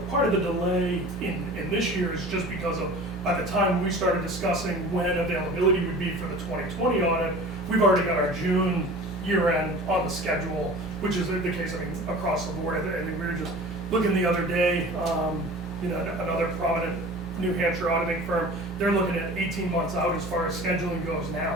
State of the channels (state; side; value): normal; both; correlation 0.40